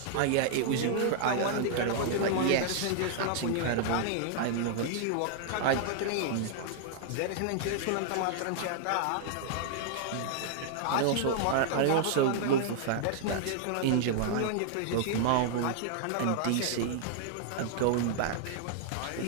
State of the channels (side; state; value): both; different; correlation -0.01